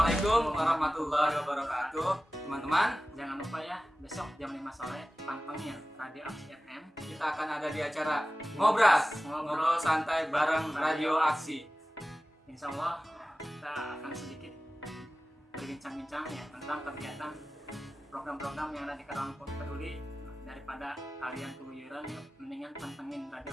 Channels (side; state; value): both; normal; correlation 0.96